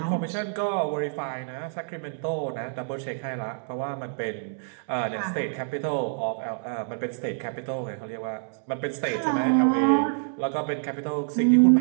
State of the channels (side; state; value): left; silent; digital silence